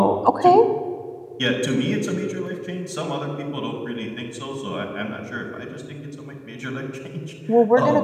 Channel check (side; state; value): both; identical; correlation 1.00